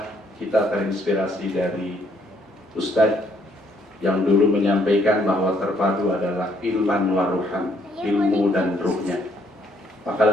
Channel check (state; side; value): normal; both; correlation 0.68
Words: kita terinspirasi dari Ustadz yang dulu menyampaikan bahwa Terpadu adalah ilman waruhan, ilmu dan ruhnya. Maka